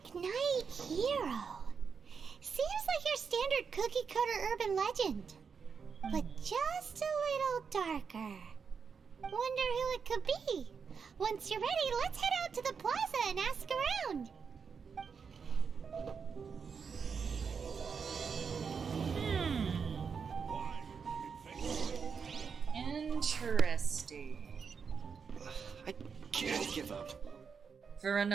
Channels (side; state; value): left; quieter; 6.0 dB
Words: Knight Hero. Seems like your standard cookie cutter urban legend. But just a little darker. Wonder who it could be. Once you're ready, let's head out to the plaza and ask around. Interesting. I can't give up. For